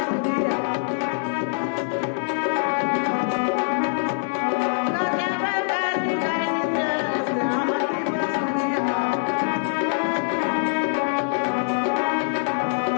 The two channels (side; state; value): right; silent; 63 dB below the other